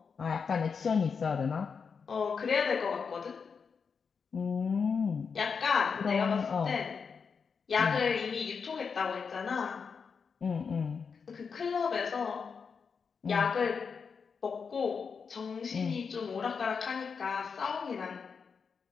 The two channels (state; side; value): quieter; right; 5.8 dB